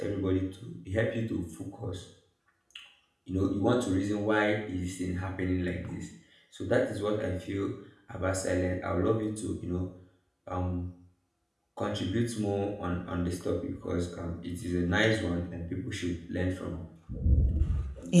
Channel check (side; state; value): both; identical; correlation 1.00